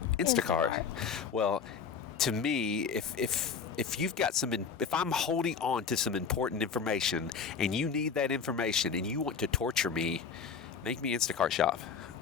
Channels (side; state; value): right; quieter; 6.2 dB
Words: Instacart. Well, to me, if you've got if I'm holding on to some important information and you need that information and you want to torture me, make me Instacart shop.